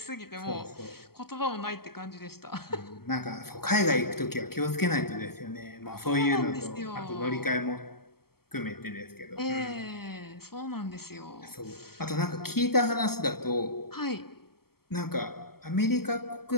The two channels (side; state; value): right; late; 0.95 ms